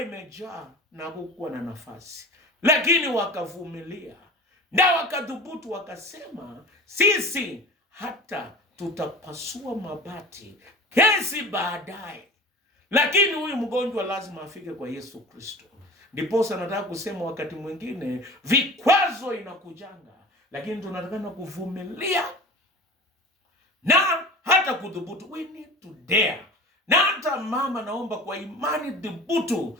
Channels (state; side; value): normal; both; correlation 0.38